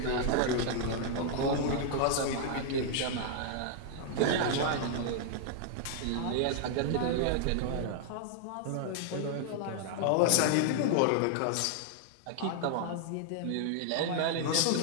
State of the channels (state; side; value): different; both; correlation 0.00